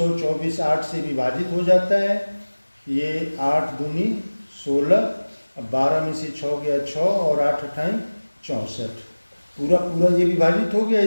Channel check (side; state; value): both; inverted; correlation -1.00